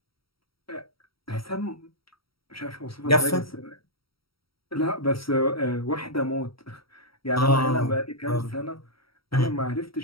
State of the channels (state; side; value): late; right; 0.75 ms